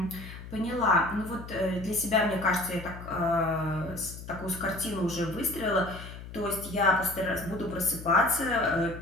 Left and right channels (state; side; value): noise; left; hum, 13 dB below the sound